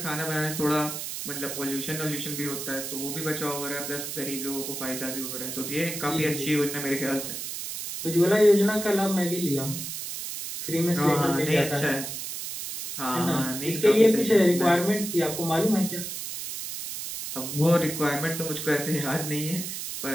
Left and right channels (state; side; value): noise; right; hiss, 6 dB below the sound